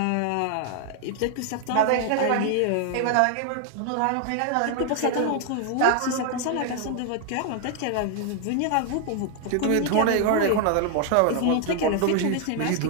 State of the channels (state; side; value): different; both; correlation 0.00